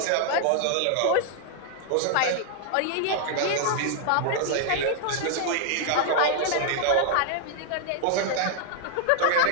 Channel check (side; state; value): both; different; correlation 0.00